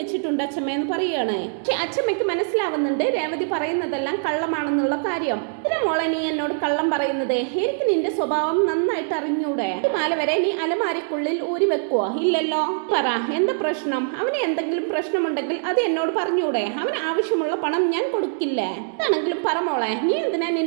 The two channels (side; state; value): left; silent; digital silence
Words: അച്ഛമ്മ എന്ന് പറയുകയാണ്. പക്ഷെ അച്ഛമ്മയ്ക്ക് മനസ്സിലാവുന്നുണ്ട് രേവതി പറയുന്നതെല്ലാം കള്ളമാണെന്നുള്ള കാര്യം. ഇതിനെ മോളെ നീ എന്നോട് കള്ളം പറയുന്നത്? എനിക്ക് നിന്റെ സ്വഭാവം നന്നായിട്ട് അറിഞ്ഞൂടെ? ഈ മാല വരെ നീ അലമാരക്കുള്ളിൽ ഊരി വെക്കുവോ? ഇല്ലല്ലോ. പറ എന്താ പ്രശ്നം? അവന് എന്തെങ്കിലും പ്രശ്നമുണ്ടെങ്കിൽ അത് എന്നോട് പറഞ്ഞൂടെ? അവന് ആവശ്യമുള്ള പണം ഞാൻ കൊടുക്കില്ല. ആണെങ്കിലും പറമോളെ, നീ എന്തിനാ